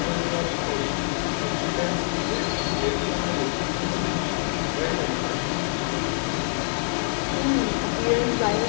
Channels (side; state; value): right; silent; digital silence